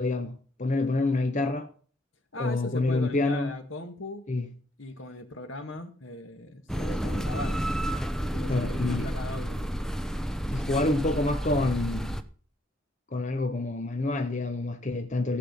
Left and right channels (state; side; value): normal; both; correlation 0.71